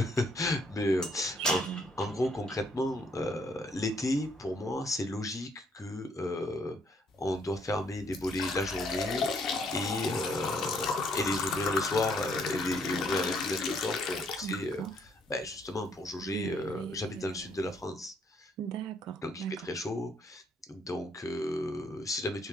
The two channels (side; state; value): both; normal; correlation 0.69